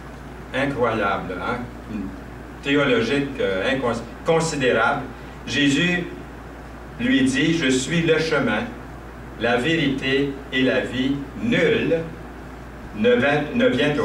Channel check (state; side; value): identical; both; correlation 1.00